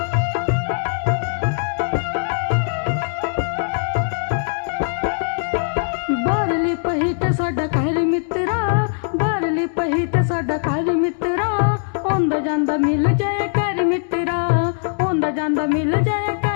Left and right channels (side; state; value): right; silent; digital silence